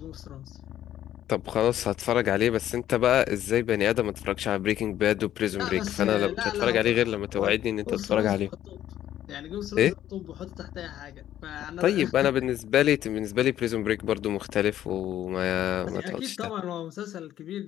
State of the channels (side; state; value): right; quieter; 11.9 dB